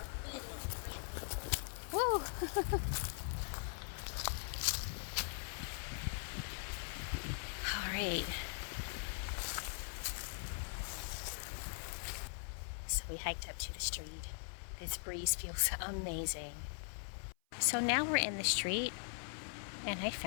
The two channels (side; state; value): right; silent; 50 dB below the other